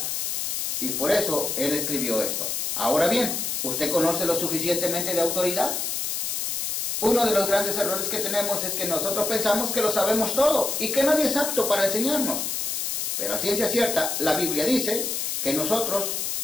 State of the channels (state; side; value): noise; left; hiss, 1 dB below the sound